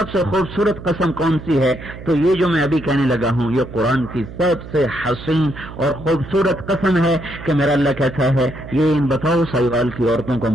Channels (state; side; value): noise; right; hum, 13 dB below the sound